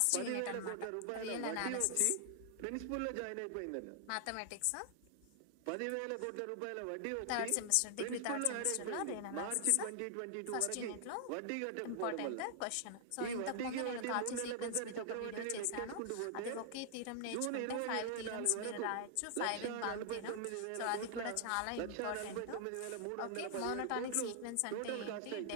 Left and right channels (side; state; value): both; different; correlation 0.00